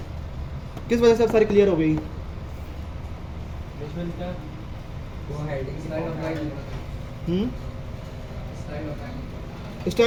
किस वजह से अब सारी क्लियर हो गई?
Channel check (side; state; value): both; identical; correlation 1.00